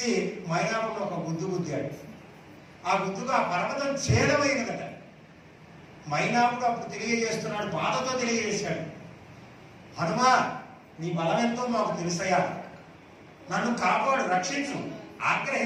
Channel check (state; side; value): identical; both; correlation 1.00